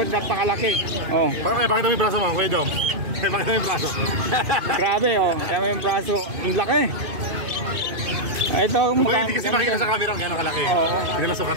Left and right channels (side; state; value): left; late; 2.4 ms